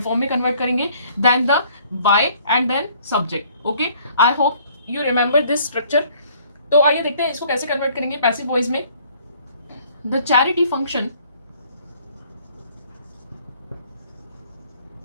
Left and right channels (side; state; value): both; inverted; correlation -0.59